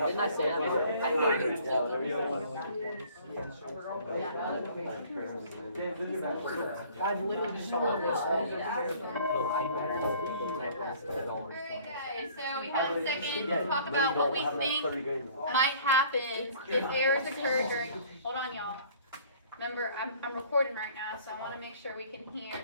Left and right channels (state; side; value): inverted; both; correlation -0.53